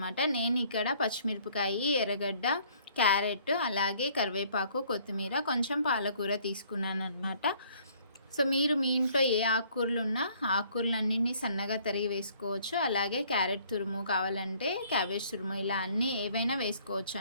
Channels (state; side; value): inverted; both; correlation -0.60